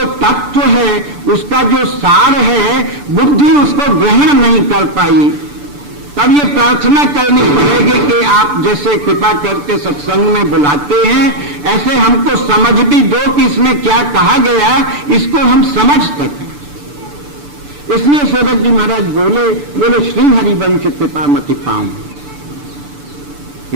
तत्व है, उसका जो सार है, बुद्धि उसको ग्रहण नहीं कर पाई। तब ये प्रार्थना करनी पड़ेगी कि आप जैसे कृपा करके सत्संग में बुलाते हैं, ऐसे हमको समझ भी दो कि इसमें क्या कहा गया, इसको हम समझ सकें। इसलिए सेवक जी महाराज बोले श्री हरिवंश कृपा मति पाऊं,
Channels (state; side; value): late; left; 6.9 ms